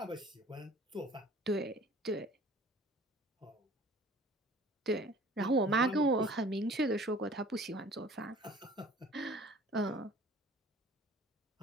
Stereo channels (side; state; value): both; normal; correlation 0.49